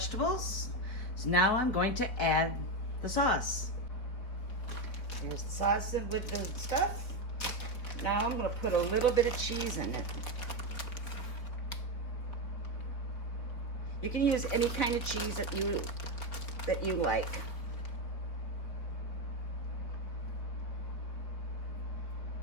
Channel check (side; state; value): right; late; 4.2 ms